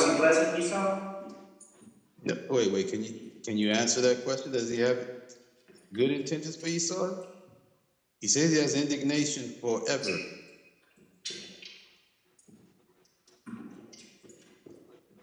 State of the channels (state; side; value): identical; both; correlation 1.00